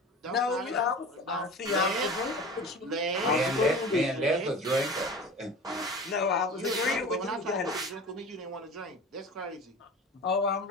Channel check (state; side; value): normal; both; correlation 0.36